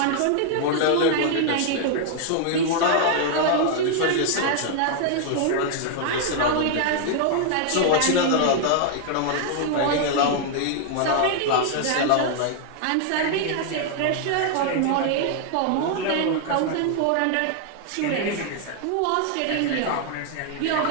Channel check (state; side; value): different; both; correlation 0.00